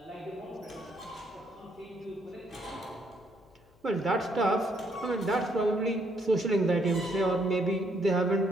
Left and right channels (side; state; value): left; noise; hum, 30 dB below the sound